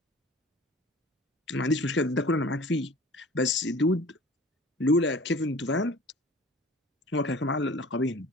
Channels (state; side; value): normal; both; correlation 0.44